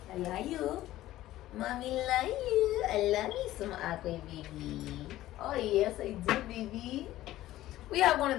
I love you. Mommy love you. I love me some aqua, baby. Oh yes, I do, baby. We have one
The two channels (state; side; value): quieter; right; 15.0 dB